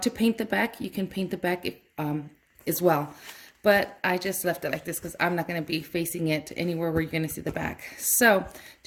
to paint the back, you can paint the back as well, but I just left it like this because I'm not going to be facing it anywhere where you're going to see the back. So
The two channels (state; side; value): identical; both; correlation 1.00